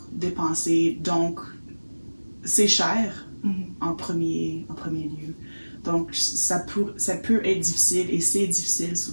dépenser. Donc, c'est cher en premier lieu. Donc, ça peut être difficile, et c'est difficile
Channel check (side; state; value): both; inverted; correlation -1.00